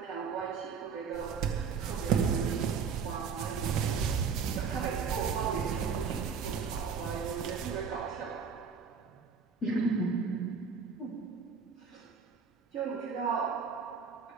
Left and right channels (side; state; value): left; quieter; 5.9 dB